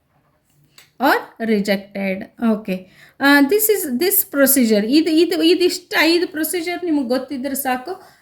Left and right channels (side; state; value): both; identical; correlation 1.00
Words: or rejected. Okay, this procedure, ಇದಿಷ್ಟು 5 ಪ್ರೊಸೀಜರ್ ನಿಮಗೆ ಗೊತ್ತಿದ್ರೆ ಸಾಕು,